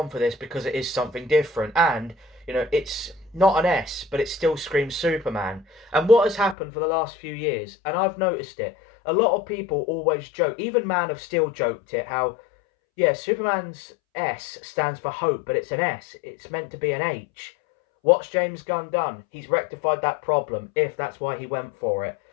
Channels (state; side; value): drops out; right; at 6.6 s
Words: for this because it is something different. And, you know, it's not an S, but it still screams Superman. And what has happened for the last few years, and I've noticed it, a lot of people always joke, even Man of Steel joked it, how, yeah, Superman's S stands for hope, but it's an S. It's meant to be an H. What's James Gunn done? He's rectified that problem, if that's why he went for it.